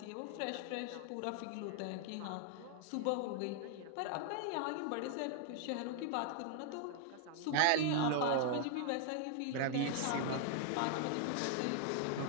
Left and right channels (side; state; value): both; different; correlation 0.00